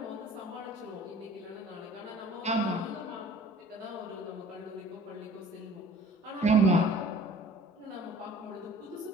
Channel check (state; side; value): normal; both; correlation 0.49